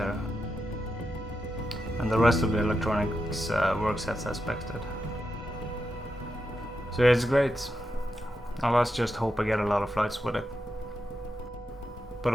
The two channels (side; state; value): both; normal; correlation 0.87